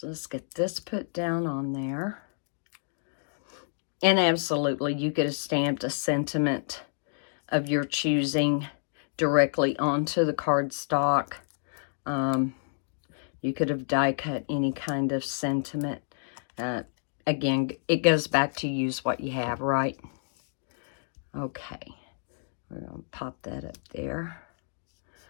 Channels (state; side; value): silent; right; digital silence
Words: let's get this put down on there. And absolutely, you could have stamped a sentiment of your choosing directly onto the cardstock. You could have die cut any kind of sentiment. Again, it goes back to use what you have, right? Okay. We're going to pop that up there.